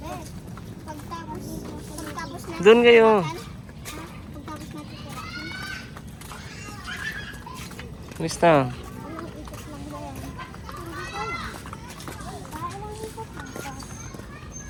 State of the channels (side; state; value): both; identical; correlation 1.00